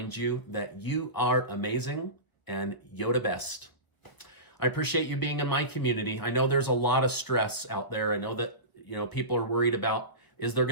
you that you are amazing and Yoda best. I appreciate you being in my community. I know there's a lot of stress out there. I know that, people are worried about, is there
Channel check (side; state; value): right; late; 1.2 ms